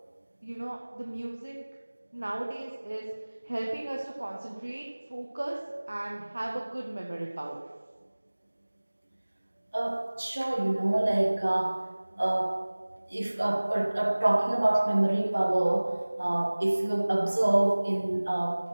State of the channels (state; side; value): inverted; both; correlation -1.00